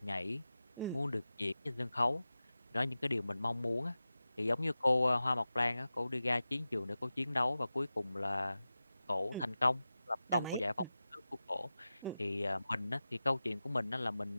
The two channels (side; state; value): both; inverted; correlation -0.95